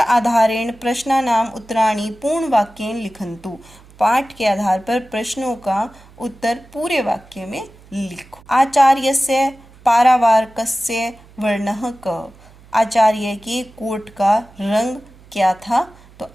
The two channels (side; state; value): right; noise; hum, 24 dB below the sound